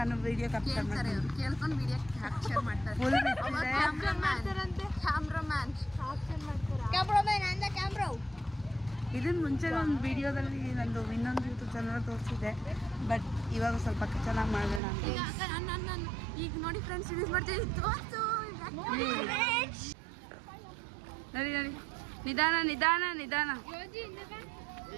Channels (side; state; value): left; drops out; at 14.8 s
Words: ವಿಡಿಯೋ ಕ್ಯಾಪ್ಚರ್ ಮಾಡ್ತೀನಿ. ಕೇಳ್ಕೊಂಡು ವಿಡಿಯೋ ಕ್ಯಾಪ್ಚರ್ ಮಾಡ್ತಾರೆ. ಫುಲ್ ಇದನ್ನ ಮುಂಚೆ ಒಂದು ವಿಡಿಯೋದಲ್ಲಿ ನಂದು ಇನ್ನೊಂದು ಯೂಟ್ಯೂಬ್ ಚಾನಲ್ ತೋರಿಸಿದೆ, ಬಟ್ ಇವಾಗ ಸ್ವಲ್ಪ ಚೆನ್ನಾಗಿ ಮಾಡೋಣ ಅಂತ. ಈಗ ನೋಡಿ ಫ್ರೆಂಡ್ಸ್ ಯೂಸ್ ಮಾಡ್ತೀವಿ. ನಡಿ ನಡಿ, ನಿಧಾನ ನಿಧಾನ ನಿಧಾನ